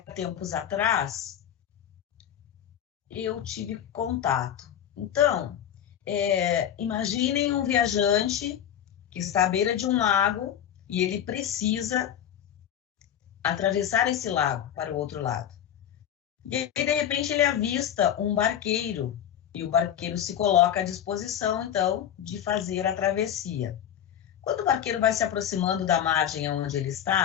atrás eu tive contato. Então, imaginem um viajante que está à beira de um lago e ele precisa atravessar esse lago para o outro lado. E aí, de repente, ele avista um barqueiro e o barqueiro se coloca à disposição, então, de fazer a travessia. Quando o barqueiro vai se aproximando da margem onde ele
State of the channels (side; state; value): right; quieter; 10.1 dB